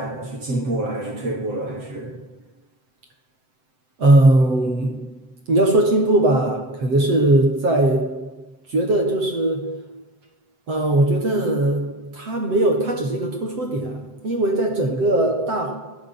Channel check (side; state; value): left; late; 7.8 ms